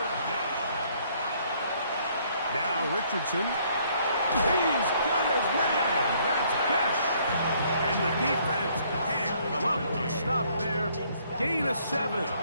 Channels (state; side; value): inverted; both; correlation -0.64